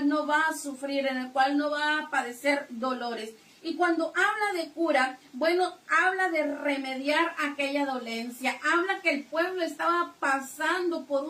no va a sufrir, en el cual no va a padecer dolores. Y cuando habla de cura, bueno, habla de remediar aquella dolencia, habla que el pueblo estaba pasando por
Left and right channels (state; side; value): identical; both; correlation 1.00